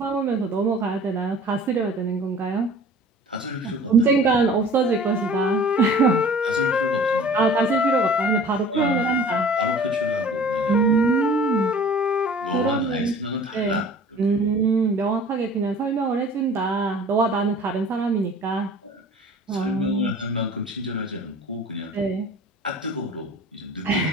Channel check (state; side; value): normal; both; correlation 0.46